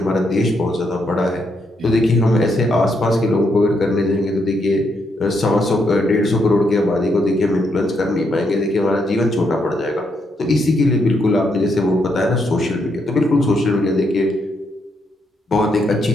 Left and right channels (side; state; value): both; normal; correlation 0.78